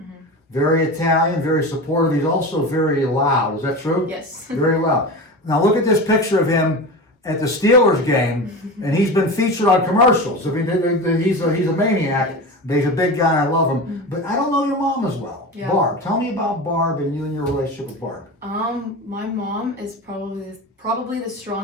very Italian, very supportive. He's also very loud. Is that true? Yes. Very loud. Now look at this picture of him at the Steelers game, and he's been featured on commercials. I mean, he's a maniac. But he's a big guy, and I love him. But I don't know your mom as well. Yeah. Barb, tell me about Barb and you and your relationship with Barb. My mom is probably the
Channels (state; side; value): normal; both; correlation 0.27